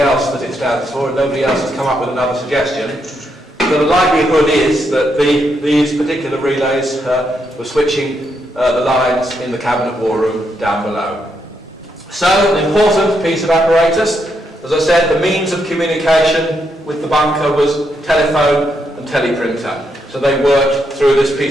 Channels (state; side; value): normal; both; correlation 0.79